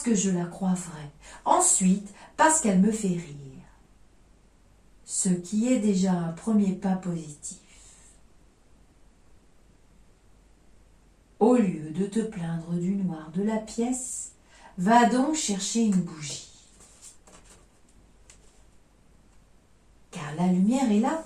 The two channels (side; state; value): both; identical; correlation 1.00